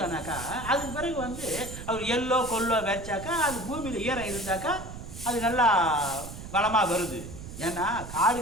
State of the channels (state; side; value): noise; right; rumble, 11 dB below the sound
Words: சொன்னாக்கா அதுக்கு பிறகு வந்து அவர் எள்ளோ கொல்லோ விரைச்சாக்கா அது பூமியில் ஈரம் இருந்தாக்கா அது நல்லா வளமாக வருது. ஏன்னா